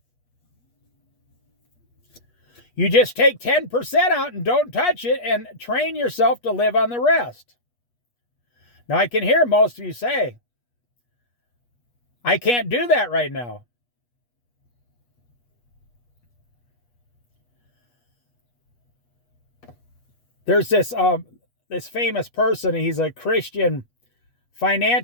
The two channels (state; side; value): late; right; 8.3 ms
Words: You just take 10% out and don't touch it and train yourself to live on the rest. Now, I can hear most of you say, "I can't do that right now." There's this famous person. He's a Christian